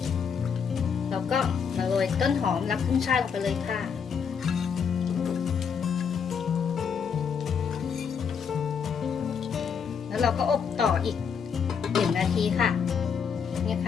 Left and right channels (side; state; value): right; quieter; 6.7 dB